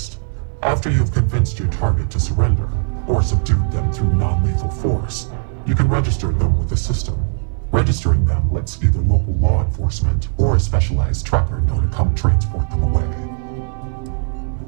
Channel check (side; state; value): left; silent; 60 dB below the other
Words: After you've convinced your target to surrender, or subdued them through non-lethal force, you can register them with the system. Registering them lets either local law enforcement or a specialized tracker know to come transport them away.